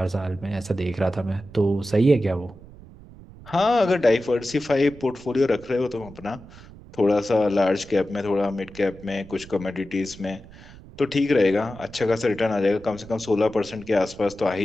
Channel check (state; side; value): noise; right; rumble, 19 dB below the sound